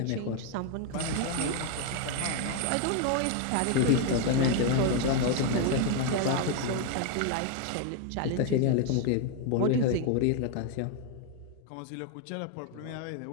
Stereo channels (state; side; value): different; both; correlation 0.01